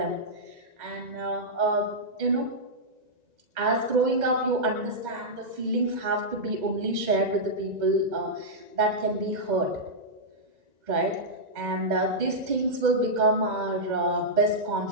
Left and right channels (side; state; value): left; late; 2.1 ms